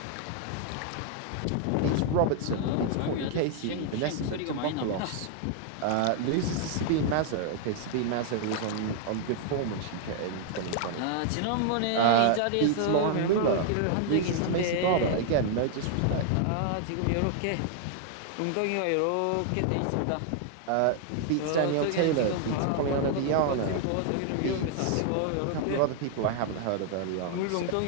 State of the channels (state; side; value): different; both; correlation 0.00